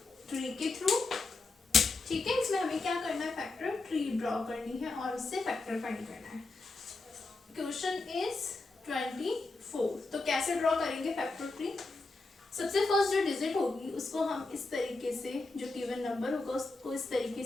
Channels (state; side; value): quieter; right; 3.5 dB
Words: tree के through. ठीक है, इसमें हमें क्या करना है, फैक्टर ट्री ड्रॉ करनी है और उससे फैक्टर फाइंड करना है. Question is 24. तो कैसे ड्रॉ करेंगे फैक्टर ट्री? सबसे फर्स्ट जो डिजिट होगी उसको हम इस तरीके से, जो गिवन नंबर होगा उसको इस तरीके